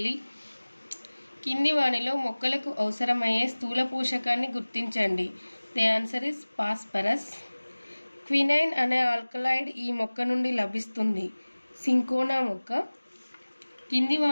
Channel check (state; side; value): inverted; both; correlation -1.00